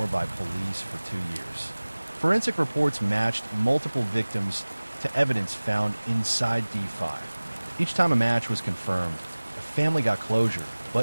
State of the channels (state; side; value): inverted; both; correlation -1.00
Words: by police for 2 years. Forensic reports matched multiple victims to evidence found inside D5. Each time a match was confirmed, a family got closure,